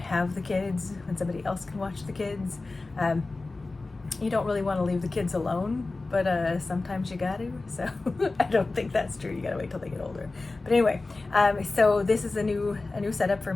the kids, when somebody else can watch the kids. You don't really want to leave the kids alone, but sometimes you got to. So I don't think that's true. You got to wait till they get older. But anyway, so this is a new setup for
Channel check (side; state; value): right; quieter; 3.4 dB